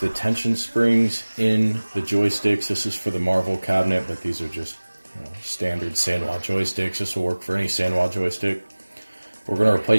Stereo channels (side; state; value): both; inverted; correlation -1.00